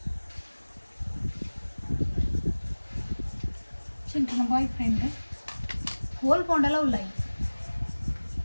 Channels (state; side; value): inverted; both; correlation -1.00